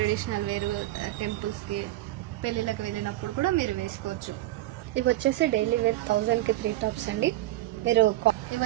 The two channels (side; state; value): left; quieter; 16.1 dB